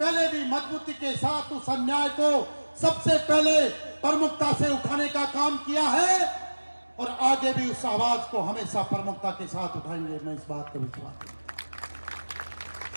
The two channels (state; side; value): inverted; both; correlation -1.00